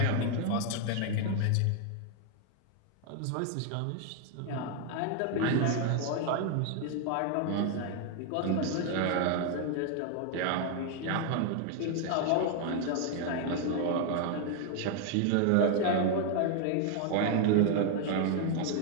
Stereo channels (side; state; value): both; different; correlation 0.00